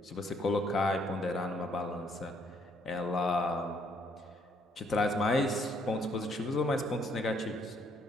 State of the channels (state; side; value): normal; both; correlation 0.68